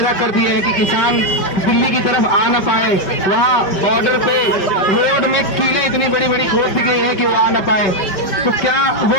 कर दिए हैं कि किसान दिल्ली की तरफ आ ना पाए। वहाँ बॉर्डर पे रोड में कीलें इतनी बड़ी बड़ी खोद दी गई है कि वो आ ना पाए। तो क्या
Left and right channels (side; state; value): right; late; 5.2 ms